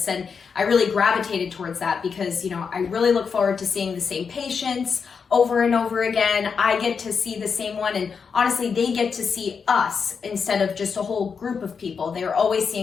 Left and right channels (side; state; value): right; quieter; 5.9 dB